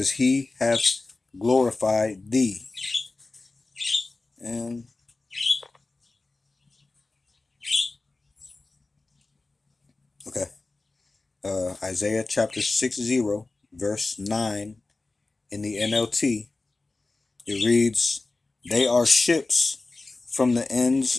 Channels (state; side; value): quieter; right; 3.4 dB